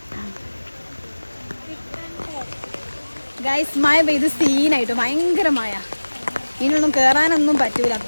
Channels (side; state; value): both; inverted; correlation -1.00